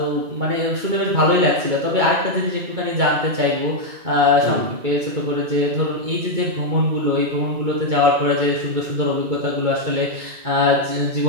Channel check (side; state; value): left; late; 2.2 ms